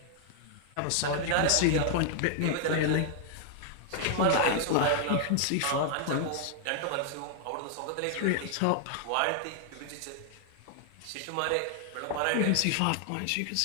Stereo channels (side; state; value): both; different; correlation 0.00